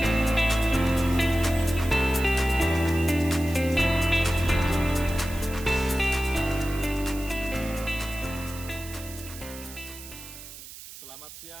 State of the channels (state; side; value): noise; right; hiss, 15 dB below the sound